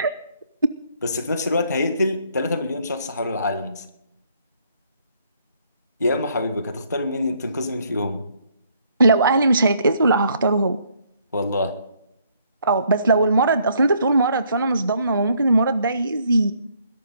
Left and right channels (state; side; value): inverted; both; correlation -0.68